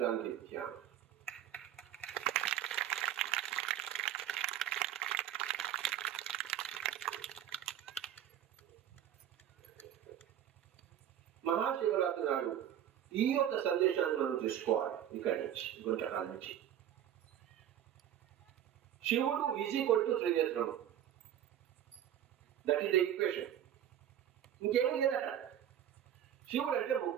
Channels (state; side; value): quieter; left; 10.8 dB